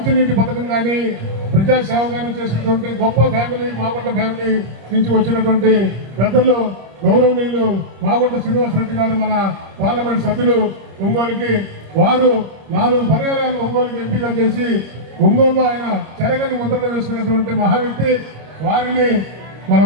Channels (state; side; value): late; left; 26 ms